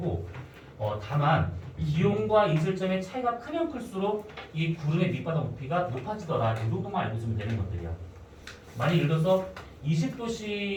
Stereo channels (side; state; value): both; identical; correlation 1.00